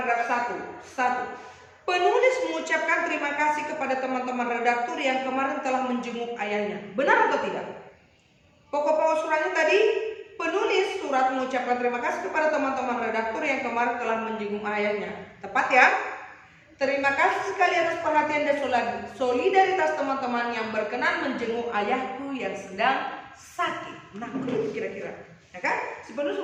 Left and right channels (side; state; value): both; identical; correlation 1.00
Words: 1. Penulis mengucapkan terima kasih kepada teman-teman redaktur yang kemarin telah menjenguk ayahnya. Benar atau tidak? Pokok-pokok suratnya tadi, penulis surat mengucapkan terima kasih kepada teman-teman redaktur yang kemarin telah menjenguk ayahnya. Tepat ya? Terima kasih sekali atas perhatian dan solidaritas teman-teman yang berkenan menjenguk ayahku yang sedang sakit. Nah, begitu kira-kira. Ya kan? Si penulis